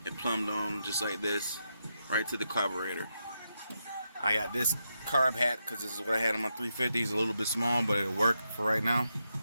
it plumbed on just like this right to the carburetor. I got this carb hat because this is what I had on my 350. It's a little bit small, but it'll work for right now.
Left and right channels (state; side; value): inverted; both; correlation -0.84